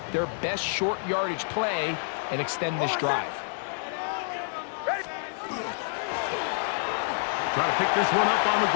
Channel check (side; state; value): right; silent; digital silence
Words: their best short yardage play and extend this drive. Try to pick this one up on the